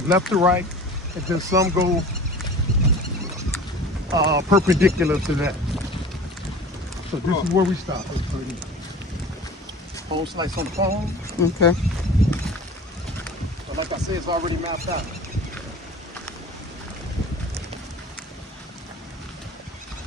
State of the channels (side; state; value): both; normal; correlation 0.40